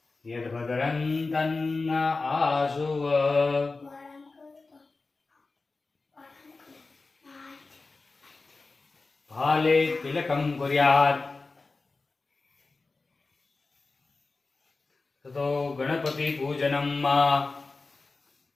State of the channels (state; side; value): quieter; right; 3.7 dB